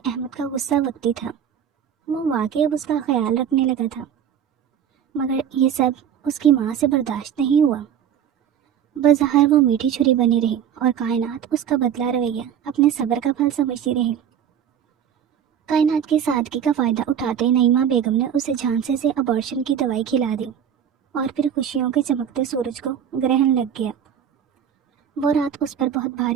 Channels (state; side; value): quieter; left; 8.9 dB